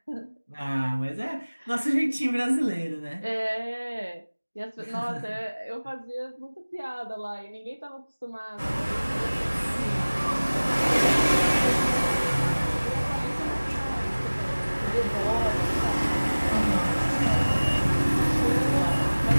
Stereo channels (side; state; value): both; inverted; correlation -1.00